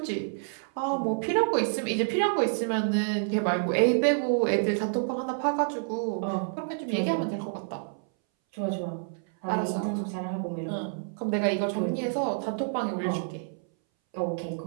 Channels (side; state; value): left; silent; 59 dB below the other